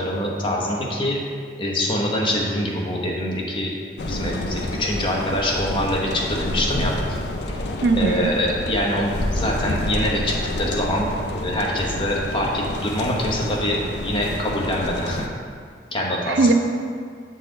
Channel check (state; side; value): normal; both; correlation 0.45